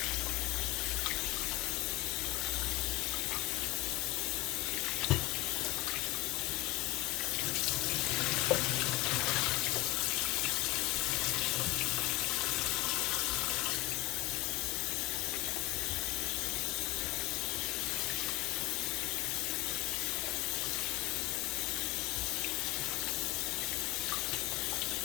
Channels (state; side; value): quieter; right; 19.4 dB